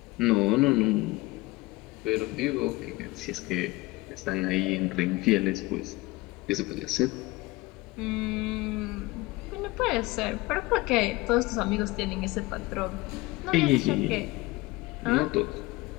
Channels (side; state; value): right; quieter; 21.4 dB